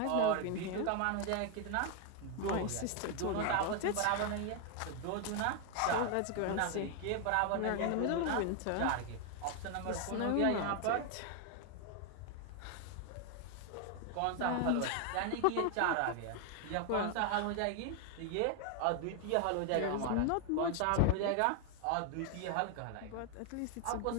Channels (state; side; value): different; both; correlation 0.01